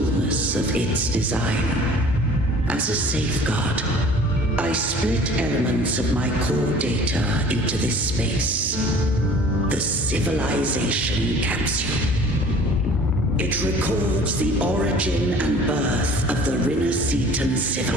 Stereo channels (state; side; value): normal; both; correlation 0.48